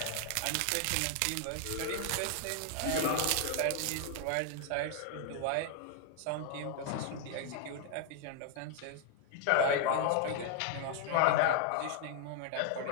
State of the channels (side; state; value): both; different; correlation 0.00